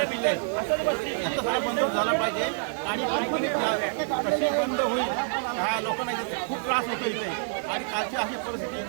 आहेत. तर याचा सगळा बंद झाला पाहिजे आणि कंपनी कशी बंद होईल ह्या लोकांना इथे खूप त्रास होतो इथे. आणि कालची अशी परिस्थिती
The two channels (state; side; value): silent; left; 60 dB below the other